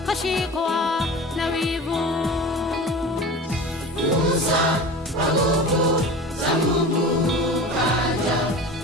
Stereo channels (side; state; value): both; normal; correlation 0.34